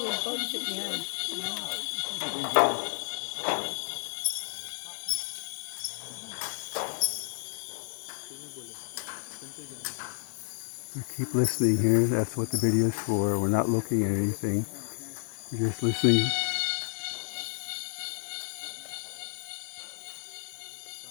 We keep listening here. That's what the video is for. We're not looking at anything. We're just listening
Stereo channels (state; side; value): silent; right; 57 dB below the other